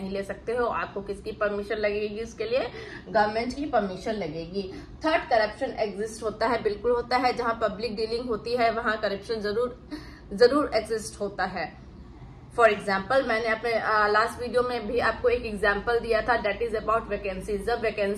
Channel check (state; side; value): identical; both; correlation 1.00